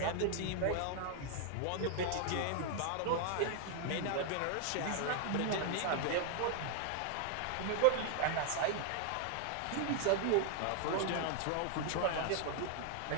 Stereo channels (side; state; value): both; different; correlation 0.00